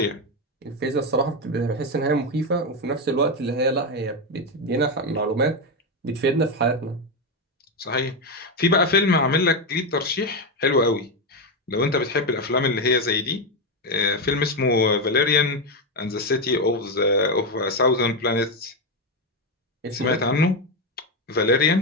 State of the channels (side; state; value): both; normal; correlation 0.09